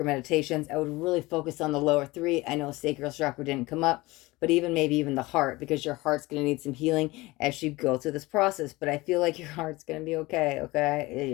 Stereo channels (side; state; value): right; quieter; 21.1 dB